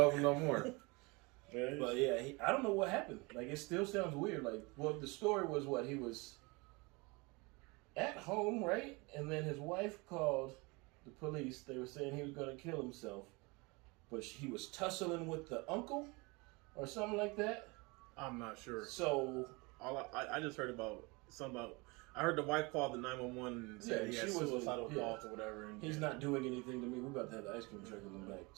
him no more. But yeah, I don't know what happened. Like, it still sounds weird. Like, well, the story was what? He was at home, right? And then his wife called the police. They were saying he was going to kill himself. But he was tussling with the uncle or something like that. I'm not sure. So I just heard about I heard the wife called the 911 and said he had suicidal thoughts or whatever. And he's not doing anything to me. We're about to have the ice cream truck in the back.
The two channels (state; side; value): quieter; left; 26.7 dB